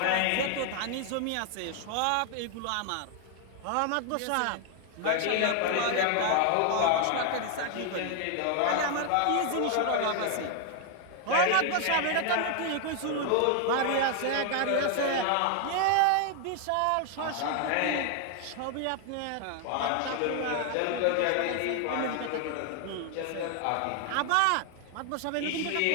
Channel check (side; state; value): both; different; correlation 0.00